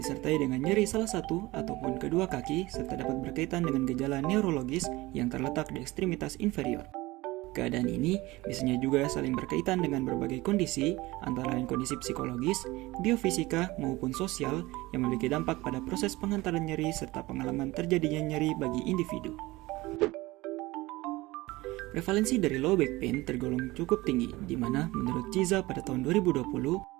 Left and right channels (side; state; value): left; quieter; 20.1 dB